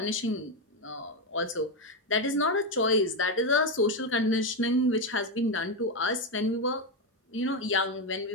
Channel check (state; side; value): normal; both; correlation 0.08